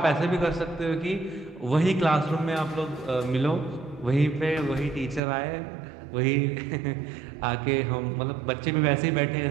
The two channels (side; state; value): left; drops out; at 5.2 s